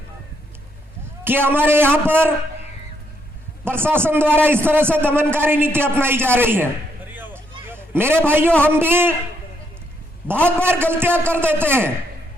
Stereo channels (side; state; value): both; normal; correlation 0.75